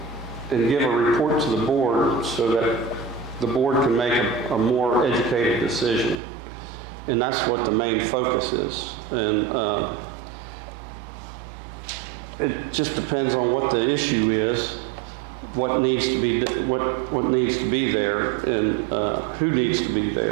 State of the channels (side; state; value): left; drops out; at 6.2 s